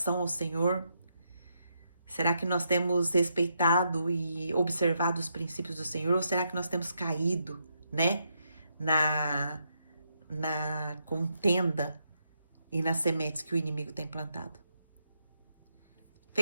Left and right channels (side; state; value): both; inverted; correlation -0.80